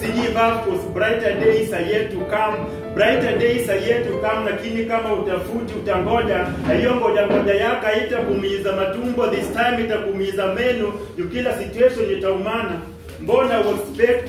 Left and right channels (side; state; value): both; identical; correlation 1.00